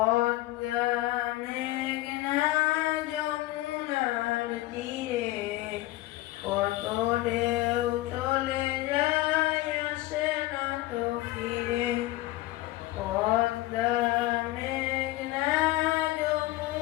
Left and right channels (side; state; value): right; quieter; 17.7 dB